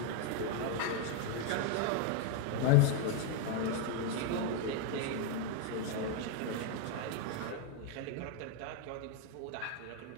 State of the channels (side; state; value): both; different; correlation 0.01